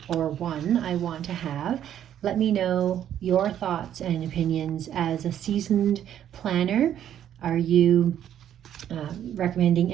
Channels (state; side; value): quieter; left; 10.4 dB